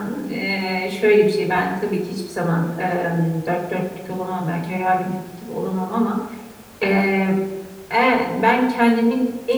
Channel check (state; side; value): identical; both; correlation 1.00